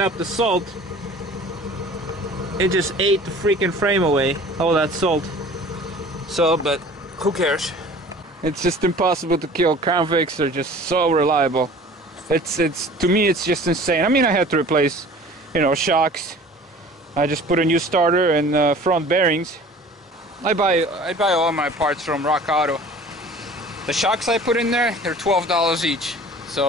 the salt, it just ate the freaking frame away, all that salt. So, but who cares? It's just impossible to kill. Crown Vics are just so reliable. It's to me it's just insane. I mean, I had to replace, you know, shocks. I just put a new starter and front bearings. I buy all my parts from Rock Auto. The shocks I put in there, they're $12 each.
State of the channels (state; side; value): normal; both; correlation 0.46